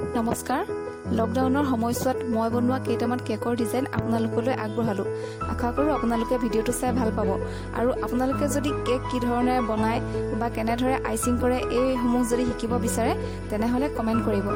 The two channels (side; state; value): both; identical; correlation 1.00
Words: লকডাউনৰ সময়ছোৱাত মই বনোৱা কেইটামান কেকৰ ডিজাইন আপোনালোকলৈ আগবঢ়ালোঁ। আশা কৰোঁ আপোনালোকে ভিডিঅ'টো চাই ভাল পাব। আৰু আপোনালোকে যদি কেক কি ধৰণে বনায় বা কেনেদৰে আইচিং কৰে এইসমূহ যদি শিকিব বিচাৰে তেনেহ'লে কমেণ্ট কৰিব।